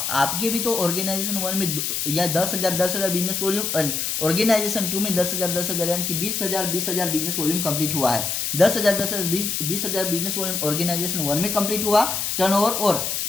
आपके भी तो ऑर्गेनाइजेशन 1 में या 10,000 बिजनेस वॉल्यूम, ऑर्गेनाइजेशन 2 में 10,000 यानी कि 20,000 बिजनेस वॉल्यूम कंप्लीट हुआ है। 10,000 20,000 बिजनेस वॉल्यूम ऑर्गेनाइजेशन 1 में कंप्लीट हुआ टर्नओवर, और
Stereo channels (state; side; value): noise; left; hiss, 1 dB below the sound